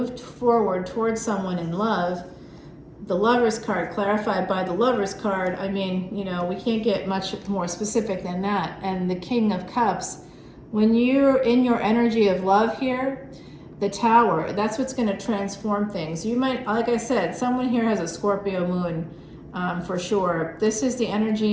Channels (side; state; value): both; identical; correlation 1.00